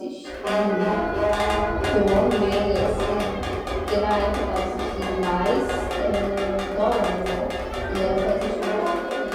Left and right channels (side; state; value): both; identical; correlation 1.00